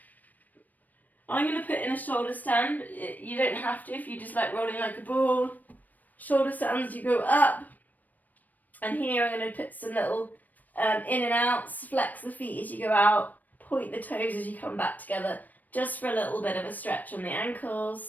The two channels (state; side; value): late; right; 0.083 ms